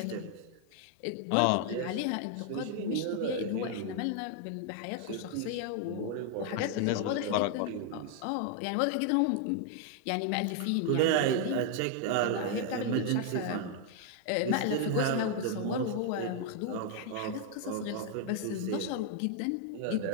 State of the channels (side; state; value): both; different; correlation 0.00